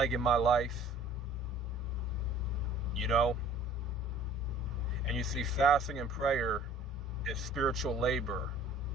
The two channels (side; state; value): both; normal; correlation 0.50